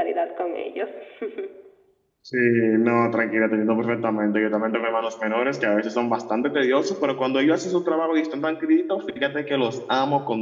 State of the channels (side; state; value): both; identical; correlation 1.00